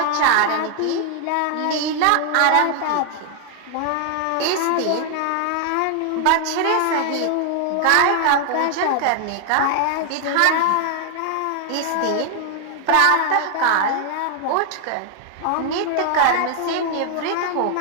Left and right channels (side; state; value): both; different; correlation 0.00